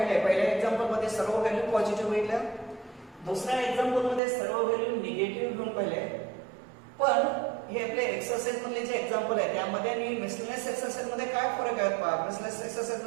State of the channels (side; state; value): left; drops out; at 4.2 s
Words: पहिल्या एक्झाम्पल मध्ये सर्व व्हॅल्यू पॉझिटिव्ह घेतल्या, दुसऱ्या एक्झाम्पल मध्ये सर्व व्हॅल्यू निगेटिव्ह घेऊन पाहिले. पण हे आपले एक्सरसाइज मधले जे एक्झाम्पल आहे त्यामध्ये आणि मिसलेनियस एक्सरसाइज मध्ये काय फरक आहे? मिसलेनियस एक्सरसाइज